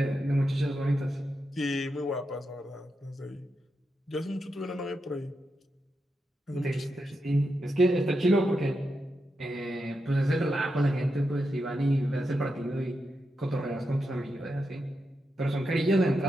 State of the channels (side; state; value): both; normal; correlation 0.86